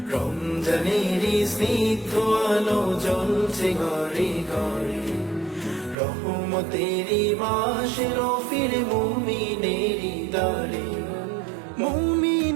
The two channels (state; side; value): drops out; left; at 6.0 s